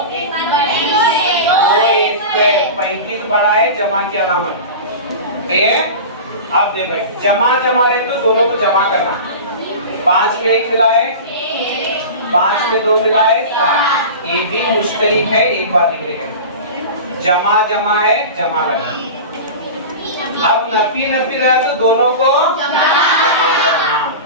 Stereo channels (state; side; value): inverted; both; correlation -0.31